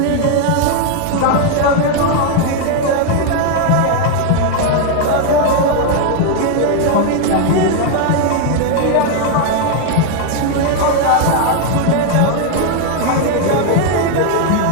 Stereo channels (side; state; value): both; different; correlation 0.00